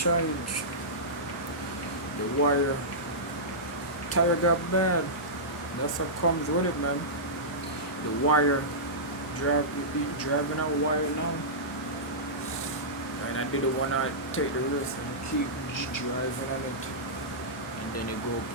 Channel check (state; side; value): normal; both; correlation -0.16